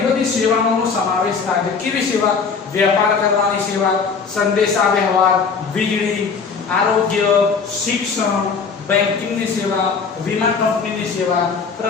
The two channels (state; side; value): quieter; right; 5.3 dB